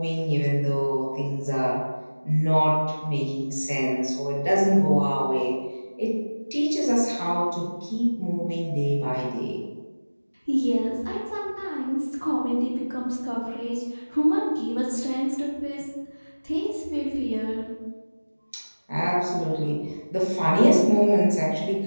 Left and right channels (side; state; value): both; inverted; correlation -1.00